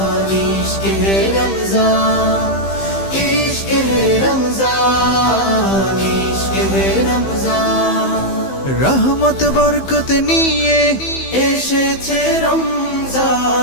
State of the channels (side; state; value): right; late; 15 ms